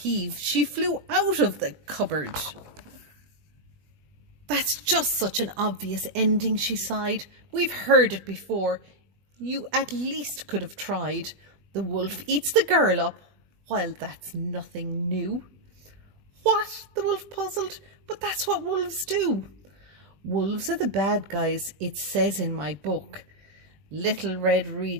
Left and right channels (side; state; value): left; late; 20 ms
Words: she flew out of the cupboard. "That's just such an obvious ending," she sighed. "We've heard it before. You at least could have tried. The wolf eats the girl up. While that's nothing new." "What?" the wolf puzzled. "But that's what wolves do." "Wolves are the bad guys, it says in my book." Little Red